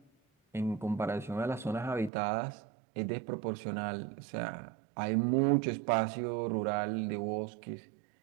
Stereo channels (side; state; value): left; drops out; at 2.1 s